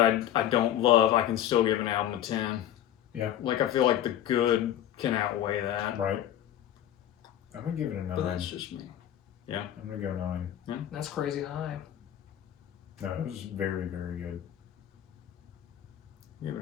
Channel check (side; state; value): right; quieter; 11.5 dB